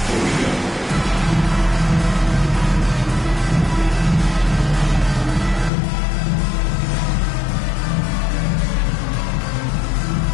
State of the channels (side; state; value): right; drops out; at 5.7 s